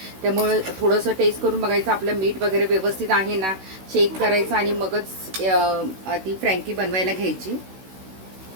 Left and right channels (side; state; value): left; late; 16 ms